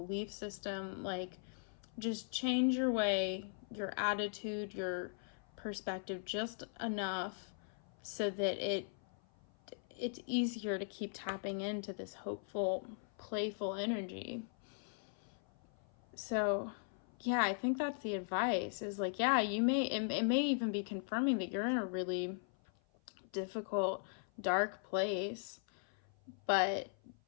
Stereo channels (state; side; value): silent; right; 51 dB below the other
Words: system. Like just change your way, your attitude, your perspective just enough so that it's easier to keep tapping into this hopeful, playful energy. So yeah, I think that's the advice, is like, yeah, it may even be confirming that you're in a really difficult, dark place, but